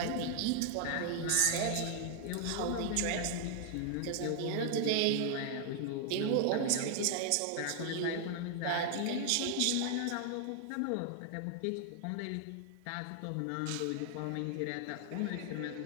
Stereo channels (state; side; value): different; both; correlation 0.00